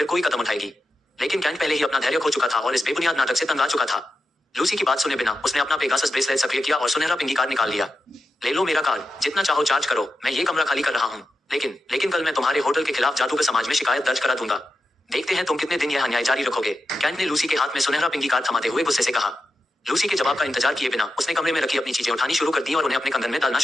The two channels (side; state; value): both; normal; correlation 0.89